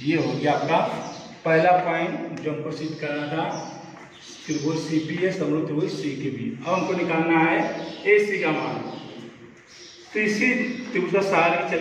ये हो गया आपका पहला पॉइंट जो हमको सिद्ध करना था, त्रिभुज CPA समरूप त्रिभुज CQB। अब हमको निकालना है AC का मान। तो इसी त्रिभुज का सहारा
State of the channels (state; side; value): identical; both; correlation 1.00